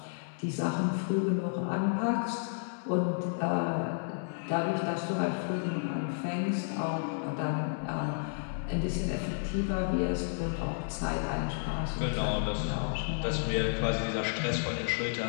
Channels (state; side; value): silent; right; 57 dB below the other